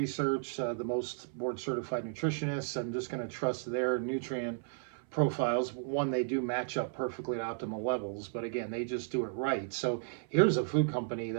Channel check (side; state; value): left; silent; 55 dB below the other